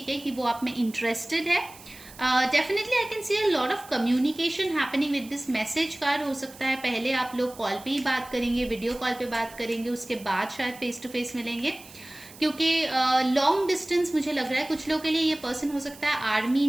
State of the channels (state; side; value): noise; right; hiss, 19 dB below the sound